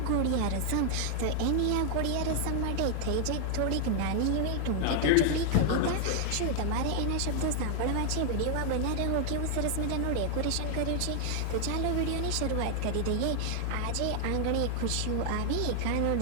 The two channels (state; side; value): different; both; correlation 0.00